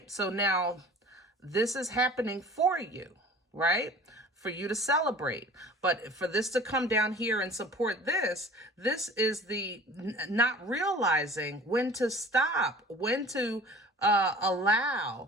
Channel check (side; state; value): both; normal; correlation 0.44